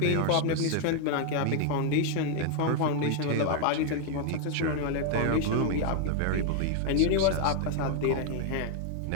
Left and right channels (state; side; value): different; both; correlation 0.00